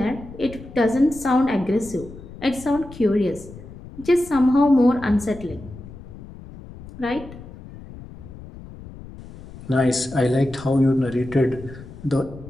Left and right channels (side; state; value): left; noise; rumble, 16 dB below the sound